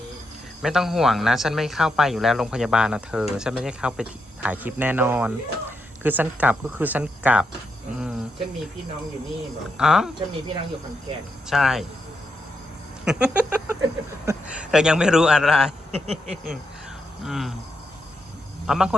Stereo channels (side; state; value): both; normal; correlation 0.83